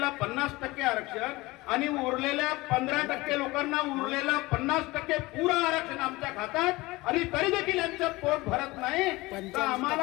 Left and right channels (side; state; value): right; quieter; 21.1 dB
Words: 50% आरक्षण आणि उरलेल्या 15% लोकांना उरलेला 50% पुरा आरक्षण आमच्या खात्यात. आणि तरी देखील यांचं पोट भरत नाही. तर